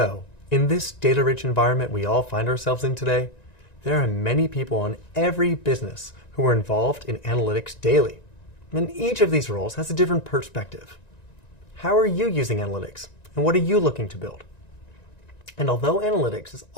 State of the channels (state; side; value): late; right; 1.9 ms